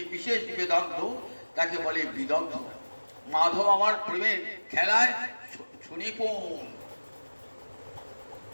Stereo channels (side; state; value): both; inverted; correlation -1.00